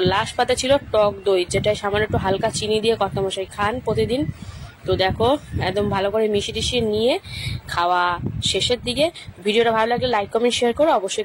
লাস্ট পাতে ছিল টক দই, যেটা সামান্য একটু হালকা চিনি দিয়ে কর্তামশাই খান প্রতিদিন। তো দেখো একদম ভালো করে মিশিয়ে টিশিয়ে নিয়ে খাওয়া শেষের দিকে। ভিডিওটা ভালো লাগলে লাইক কমেন্ট শেয়ার করো,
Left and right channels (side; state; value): both; identical; correlation 1.00